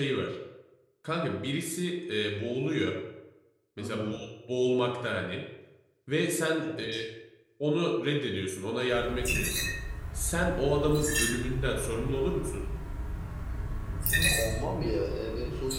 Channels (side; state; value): both; identical; correlation 1.00